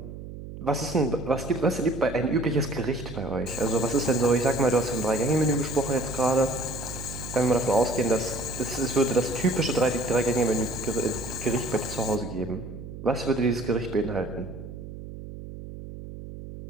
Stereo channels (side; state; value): right; noise; hum, 11 dB below the sound